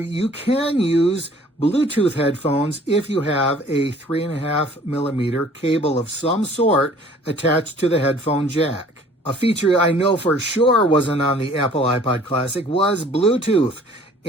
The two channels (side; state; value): both; normal; correlation 0.53